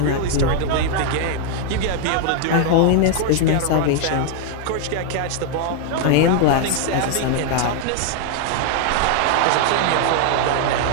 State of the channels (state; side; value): different; both; correlation 0.00